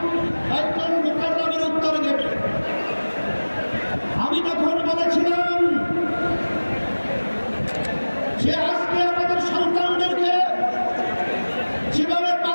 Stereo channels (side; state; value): both; inverted; correlation -1.00